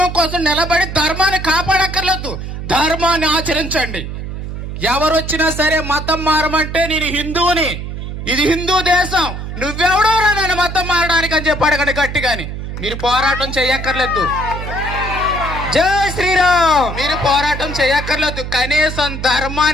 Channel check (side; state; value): right; noise; hum, 7 dB below the sound